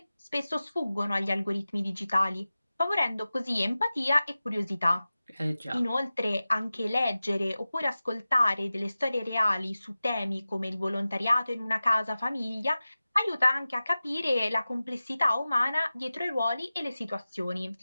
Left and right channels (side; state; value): both; inverted; correlation -0.96